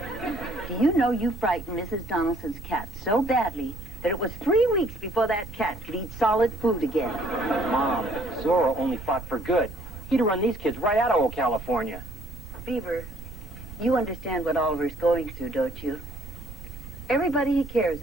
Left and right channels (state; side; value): noise; right; rumble, 13 dB below the sound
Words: Do you know you frightened Mrs. Donaldson's cat so badly that it was 3 weeks before that cat could eat solid food again? Mom, Zorro only fought for good. He'd run these kids right out of old California. Beaver, you understand what Oliver's going through, don't you? Everybody he cares